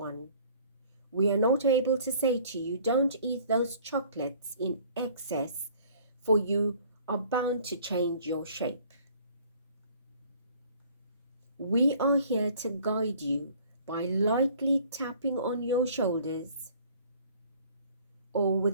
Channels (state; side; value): inverted; both; correlation -0.54